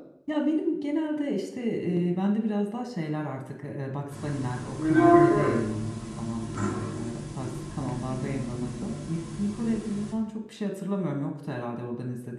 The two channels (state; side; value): identical; both; correlation 1.00